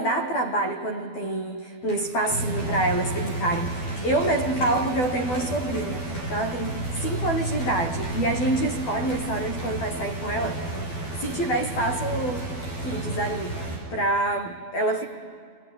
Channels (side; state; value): right; late; 12 ms